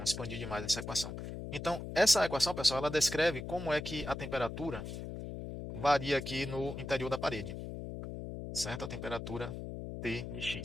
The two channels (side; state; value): left; noise; hum, 7 dB below the sound